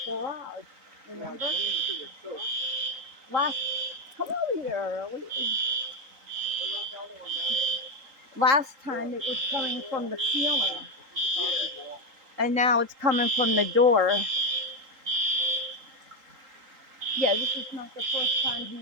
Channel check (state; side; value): late; left; 3.8 ms